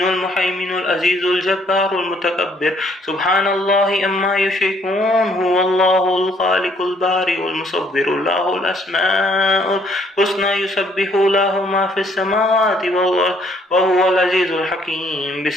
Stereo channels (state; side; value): normal; both; correlation 0.65